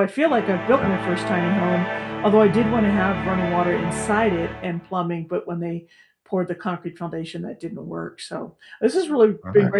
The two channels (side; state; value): both; identical; correlation 1.00